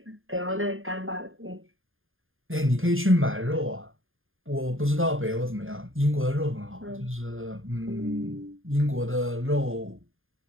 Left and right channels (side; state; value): left; late; 0.59 ms